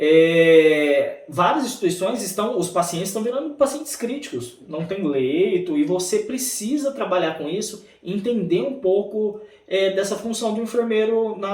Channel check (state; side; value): identical; both; correlation 1.00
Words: várias instituições os pacientes estão virando pacientes críticos, não tem leito, e você precisa trabalhar com isso, entender um pouco dessa função do enfermeiro